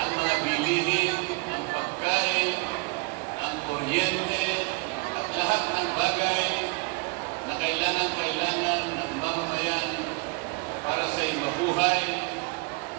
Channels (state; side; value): quieter; left; 28.4 dB